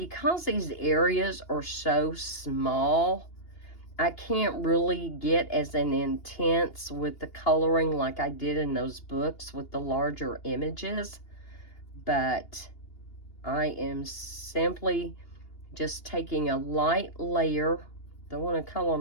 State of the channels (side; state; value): right; late; 2.8 ms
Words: these areas are so small, I can't really get as an intense with the coloring like I did in those books with the larger images. But I am simply just taking a light layer. Don't want to color